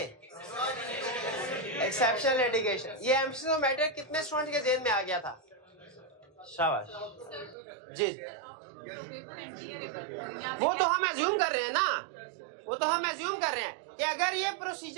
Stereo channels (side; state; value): left; drops out; at 7.6 s